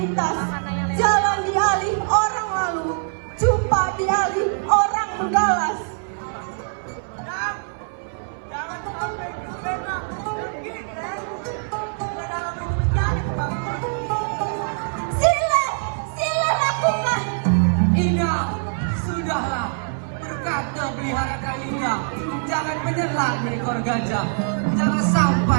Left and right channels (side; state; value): left; silent; 60 dB below the other